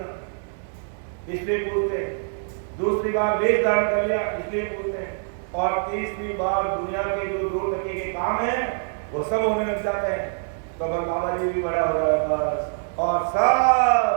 इसलिए पूछते हैं। दूसरी बार वेश धारण कर लिया, इसलिए पूछते हैं। और तीसरी बार दुनिया के जो दो टके के काम है वो सब होने लग जाते हैं। तो बाबा जी भी बड़ा हो रहा है बस, और सब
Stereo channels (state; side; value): silent; left; digital silence